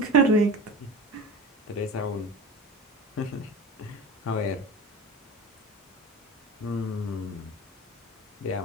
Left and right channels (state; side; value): normal; both; correlation 0.32